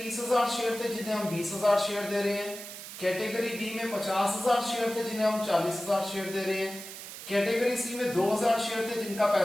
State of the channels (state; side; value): noise; right; hiss, 11 dB below the sound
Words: शेयर थे जिन्हें हम 20,000 शेयर दे रहे हैं, कैटेगरी बी में 50,000 शेयर थे जिन्हें हम 40,000 शेयर दे रहे हैं, कैटेगरी सी में 2,000 शेयर थे जिनका